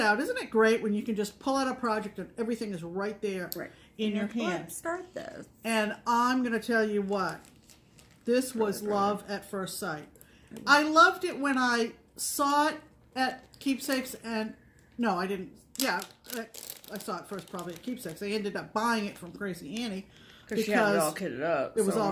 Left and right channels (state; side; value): identical; both; correlation 1.00